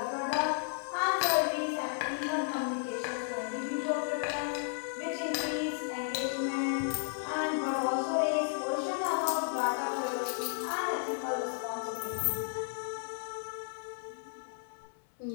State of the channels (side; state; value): right; silent; 55 dB below the other